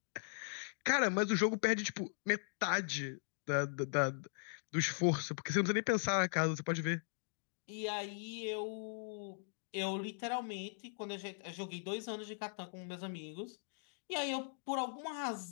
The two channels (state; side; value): silent; right; digital silence